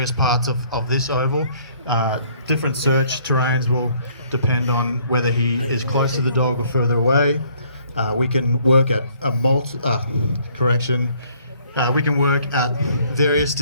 parts of this oval. Different search terrains will depend on whether he is close to the dog or further away. We can work at we can work at various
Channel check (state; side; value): inverted; both; correlation -0.62